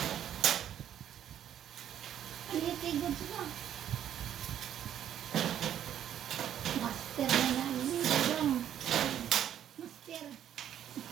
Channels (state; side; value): quieter; left; 10.2 dB